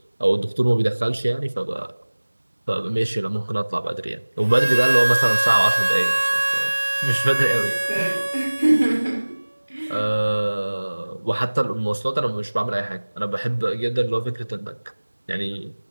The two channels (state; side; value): inverted; both; correlation -1.00